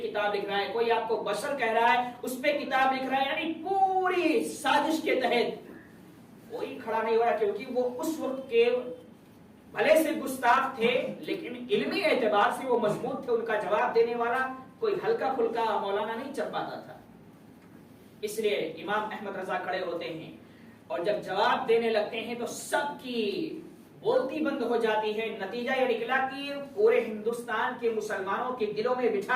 لکھ رہا ہے، کوئی آپ کو بشر کہہ رہا ہے اس پہ کتاب لکھ رہا ہے. یعنی پوری سازش کے تحت کوئی کھڑا نہیں ہو رہا، کیونکہ وہ اس وقت کے بھلے سے گستاخ تھے لیکن علمی اعتبار سے وہ مضبوط تھے. ان کا جواب دینے والا کوئی ہلکا پھلکا مولانا نہیں چل پاتا تھا. اس لیے امام احمد رضا کھڑے ہوتے ہیں اور جب جواب دینے لگتے ہیں تو سب کی بولتی بند ہو جاتی ہے. نتیجہ یہ نکلا کہ پورے ہندوستان کے مسلمانوں کے دلوں میں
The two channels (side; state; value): both; identical; correlation 1.00